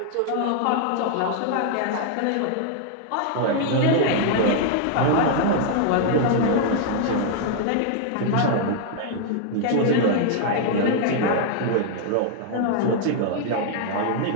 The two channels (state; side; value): different; both; correlation 0.00